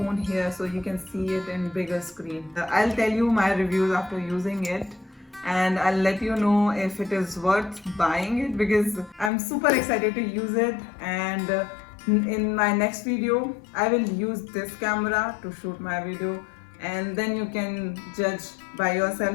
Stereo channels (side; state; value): right; drops out; at 9.3 s